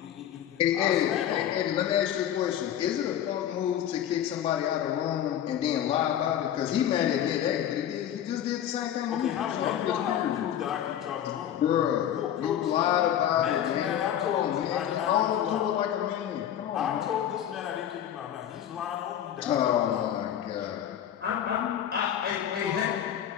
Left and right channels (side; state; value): right; quieter; 10.4 dB